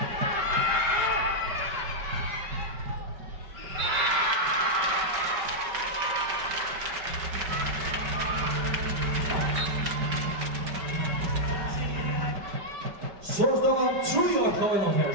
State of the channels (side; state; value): left; late; 5.1 ms